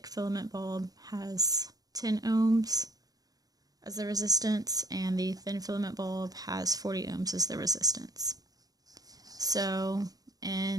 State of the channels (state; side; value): late; left; 0.18 ms